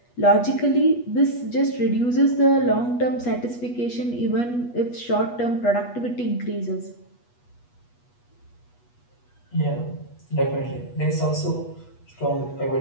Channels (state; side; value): late; right; 8.3 ms